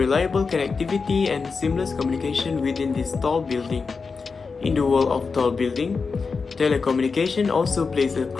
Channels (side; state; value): right; quieter; 4.8 dB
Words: connectivity and seamless communication within this tall building. In the world of tall building, telecommunication also plays a